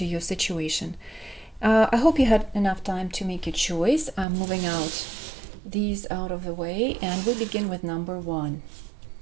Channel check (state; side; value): drops out; left; at 4.2 s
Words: your situation. I hope you had enough time to make your choice. I'm moving out these out of the way, and we begin with number 1,